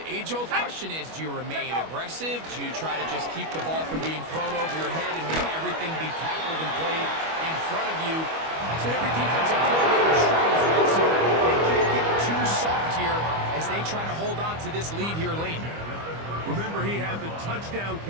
age-old question is, do you remain aggressive? Do you try to just keep the ball from being thrown over your head and make everything be tackled and played in front of you? That's what every defensive coordinator struggles with, so they can't get too soft here as they try to hold on to this lead here late. Remember, he had the touchdown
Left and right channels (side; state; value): left; late; 25 ms